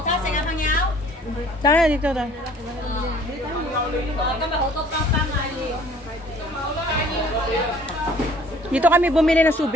Tara, dito daw. Dito kami bumili ng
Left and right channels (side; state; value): both; normal; correlation 0.54